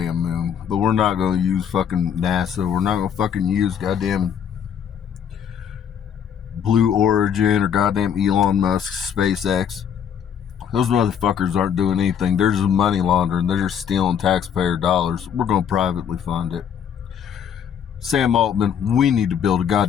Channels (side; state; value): right; quieter; 8.3 dB